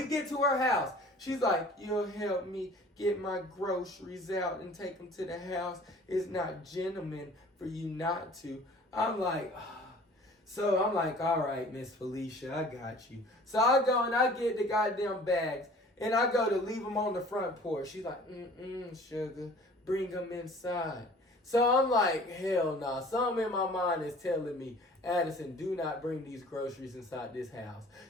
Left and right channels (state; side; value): normal; both; correlation 0.49